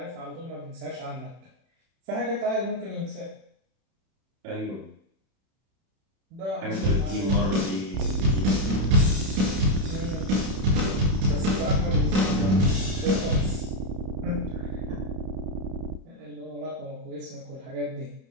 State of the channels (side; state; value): left; late; 31 ms